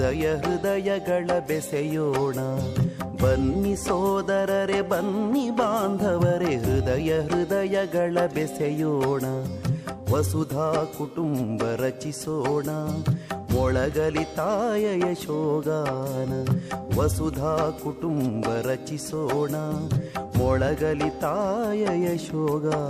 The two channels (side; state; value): both; identical; correlation 1.00